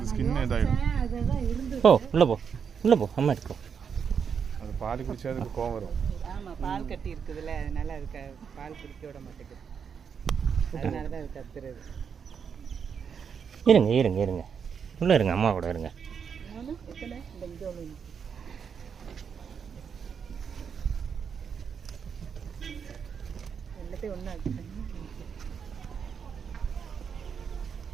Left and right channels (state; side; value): quieter; left; 6.8 dB